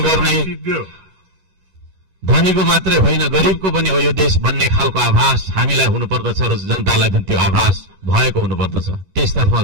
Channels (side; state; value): left; late; 10 ms